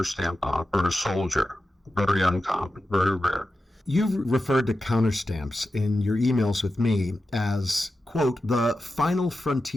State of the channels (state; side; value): normal; both; correlation 0.91